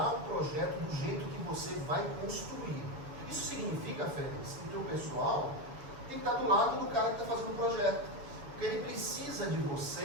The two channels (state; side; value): late; left; 7.0 ms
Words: o projeto do jeito que você vai construir. E Isso significa, Félix, que o teu pessoal tem que estar do lado do cara que está fazendo o projeto. Porque ele precisa de